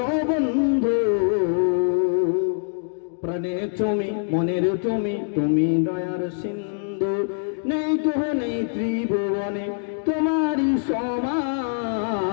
বন্ধু, প্রাণে তুমি, মনের তুমি, তুমি দয়ার সিন্ধু। নেই কেহ নেই ত্রিভুবনে তোমারই সমান,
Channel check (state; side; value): silent; right; digital silence